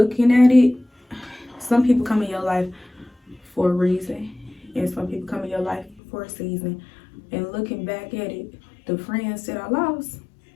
at it, some people come in your life for a reason, and some people come in your life for a season. And looking back at it, the friends that I lost,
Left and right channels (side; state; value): right; drops out; at 6.0 s